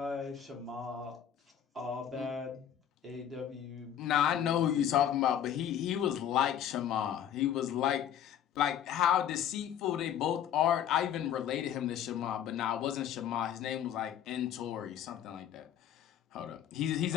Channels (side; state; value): right; quieter; 9.8 dB